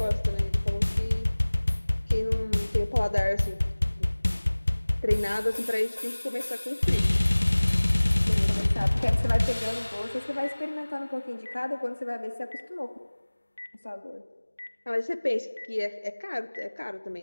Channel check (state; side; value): inverted; both; correlation -1.00